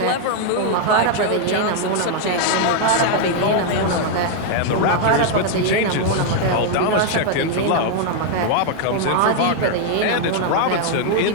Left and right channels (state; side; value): different; both; correlation 0.00